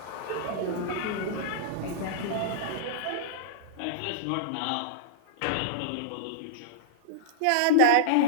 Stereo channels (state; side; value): different; both; correlation -0.02